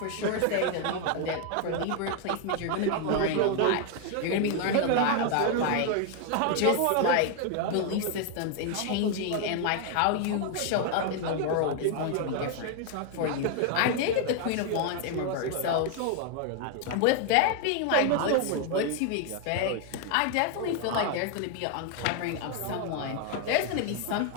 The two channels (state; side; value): different; both; correlation 0.00